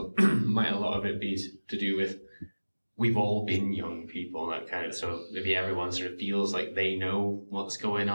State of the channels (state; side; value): inverted; both; correlation -1.00